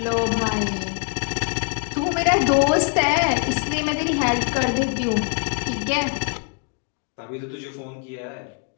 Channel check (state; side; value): quieter; right; 39.9 dB